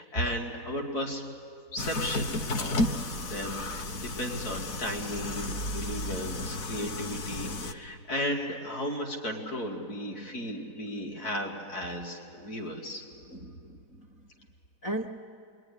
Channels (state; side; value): late; right; 4.0 ms